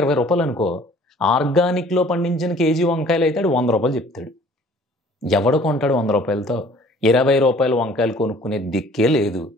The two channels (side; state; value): both; normal; correlation 0.53